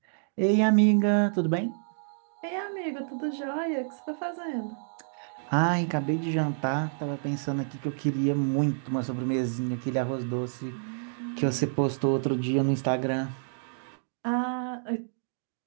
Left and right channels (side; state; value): left; silent; digital silence